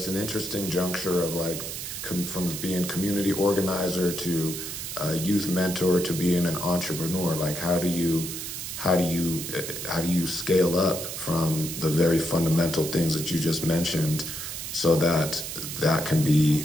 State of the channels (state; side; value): noise; right; hiss, 7 dB below the sound